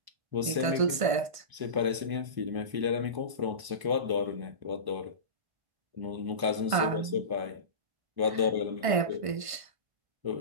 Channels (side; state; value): left; late; 1.5 ms